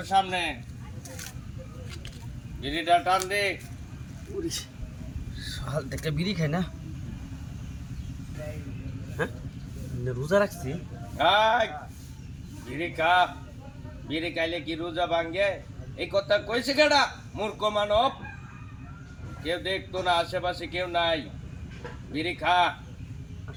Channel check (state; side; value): identical; both; correlation 1.00